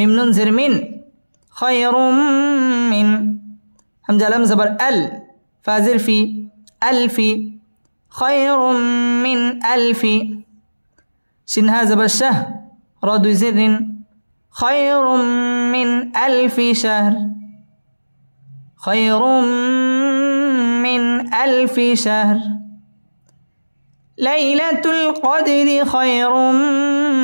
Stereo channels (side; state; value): both; inverted; correlation -1.00